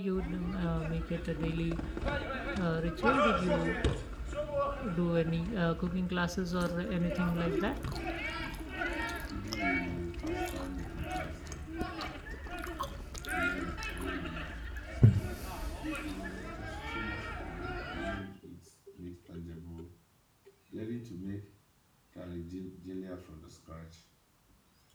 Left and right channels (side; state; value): both; identical; correlation 1.00